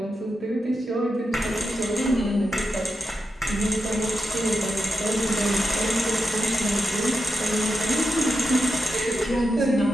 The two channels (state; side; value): normal; both; correlation 0.87